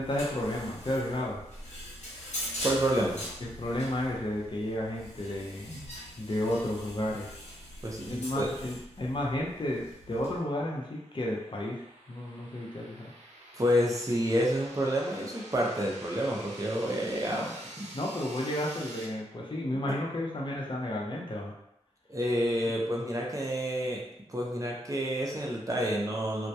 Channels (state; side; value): normal; both; correlation 0.76